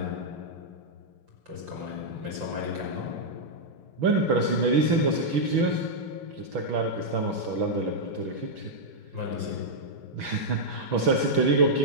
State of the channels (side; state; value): left; late; 6.1 ms